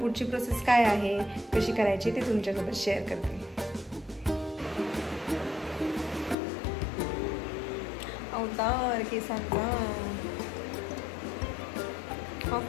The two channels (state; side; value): drops out; right; at 6.4 s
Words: प्रोसेस काय आहे, कशी करायची ते तुमच्यासोबत शेअर करते. अवतार केसांचा